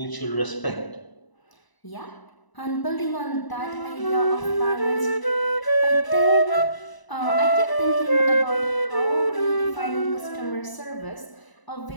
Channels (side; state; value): right; late; 1.0 ms